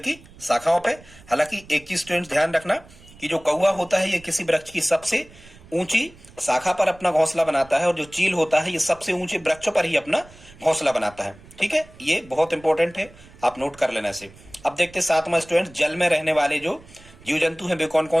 शाखाओं पे। हालांकि एक चीज स्टूडेंट्स ध्यान रखना कि जो कौवा होता है ये किसी वृक्ष की सबसे ऊंची शाखा पर अपना घोंसला बनाता है, और जो चील होता है ये सबसे ऊंचे वृक्ष पर ही अपना घोंसला बनाता है, ठीक है। ये बहुत इंपॉर्टेंट है, आप नोट कर लेना इसे। अब देखते सातवां स्टूडेंट्स, जल में रहने वाले जो जीव जंतु हैं वे कौन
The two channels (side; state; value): right; noise; rumble, 23 dB below the sound